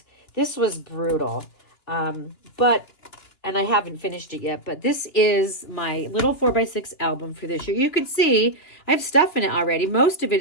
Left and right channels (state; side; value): late; right; 2.9 ms